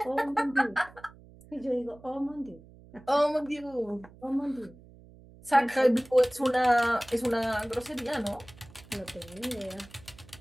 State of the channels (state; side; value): noise; right; hum, 22 dB below the sound